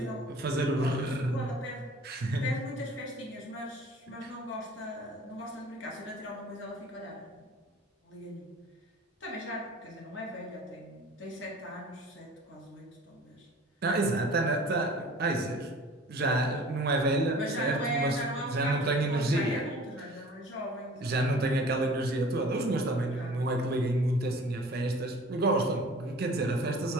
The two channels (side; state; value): both; normal; correlation 0.46